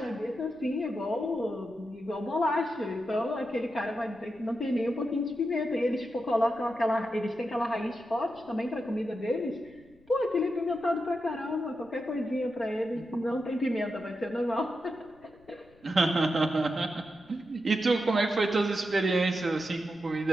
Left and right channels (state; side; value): noise; left; rumble, 29 dB below the sound